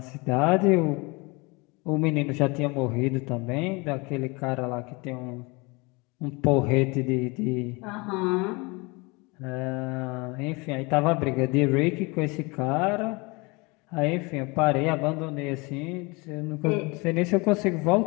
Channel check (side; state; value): right; quieter; 26.9 dB